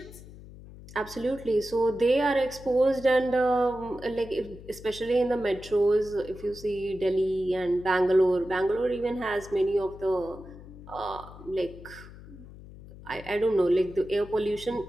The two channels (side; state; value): left; noise; hum, 17 dB below the sound